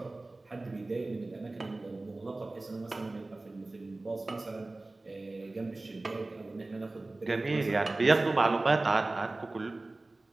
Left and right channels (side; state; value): left; quieter; 3.0 dB